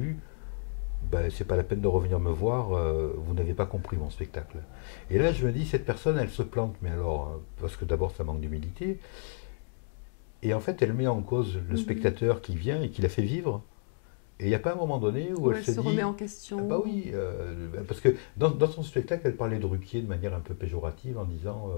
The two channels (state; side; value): silent; right; digital silence